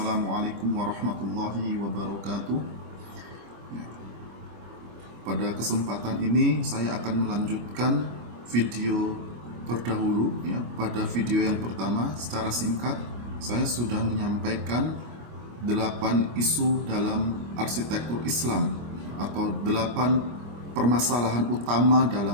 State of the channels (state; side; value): late; left; 25 ms